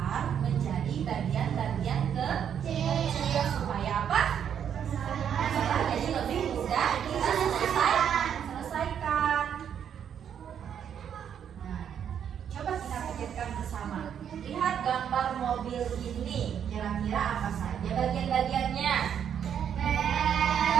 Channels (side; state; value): left; quieter; 8.6 dB